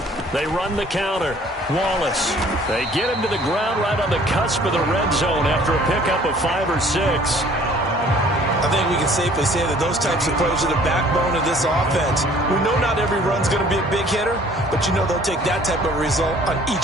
They run the counter. Wallace. They get him to the ground right on the cusp of the red zone after a pickup of 5 or 6. I think we can safely say that those types of plays are the backbone of this offense. We know not every run's going to be a big hitter, but you know they'll take that type of result on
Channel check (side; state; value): both; normal; correlation 0.55